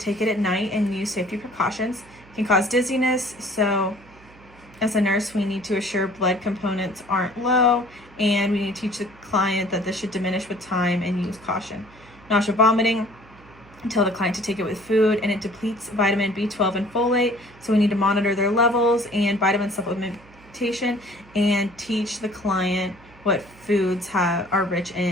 it at night and use safety precautions. It can cause dizziness, so as a nurse, we need to assure blood components aren't low, and we need to teach the client that this should diminish with time and use caution. Nausea, vomiting. Tell the client to take it with food, and it depletes vitamin B12 and folate, so we need to monitor their levels and vitamin supplementation, and teach the client what foods are rich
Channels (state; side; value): noise; right; hum, 24 dB below the sound